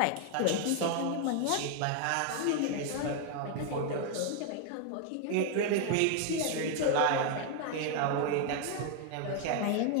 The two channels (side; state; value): both; different; correlation 0.00